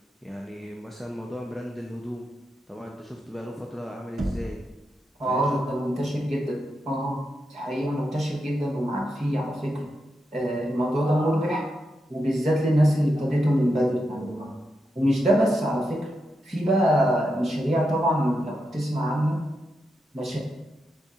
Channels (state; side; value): normal; both; correlation 0.86